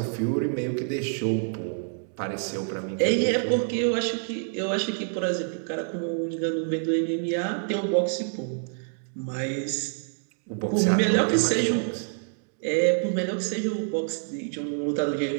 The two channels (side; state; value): left; silent; digital silence